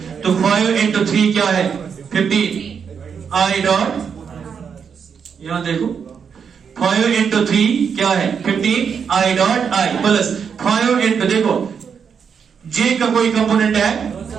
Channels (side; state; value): left; quieter; 6.7 dB